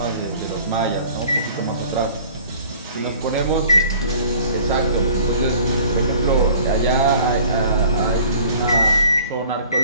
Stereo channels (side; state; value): both; inverted; correlation -0.50